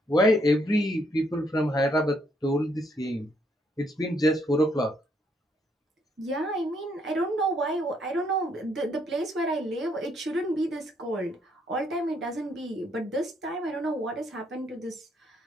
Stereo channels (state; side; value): normal; both; correlation 0.72